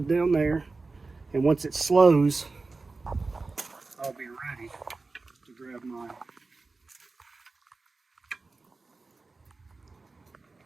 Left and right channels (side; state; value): left; quieter; 3.8 dB